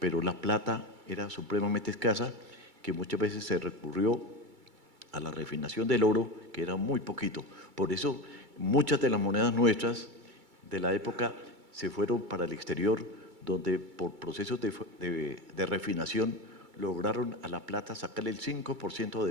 la plata era supremamente escasa, que muchas veces se recurrió a la refinación del oro, que era muy poquito. Por eso muchas de las monedas nuestras de la época se fueron para el exterior, donde por procesos de refinación lograron a la plata sacarle el 5%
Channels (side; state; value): left; late; 2.3 ms